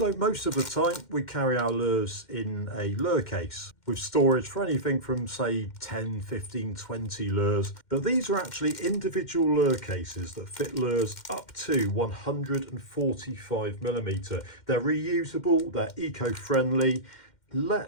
most of the time we carry our lures in a lure case with storage for anything from say 10, 15, 20 lures. But these are actually individual lure cases that fit lures up to 145mm. They're reusable, they're eco-friendly.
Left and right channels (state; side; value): late; right; 2.1 ms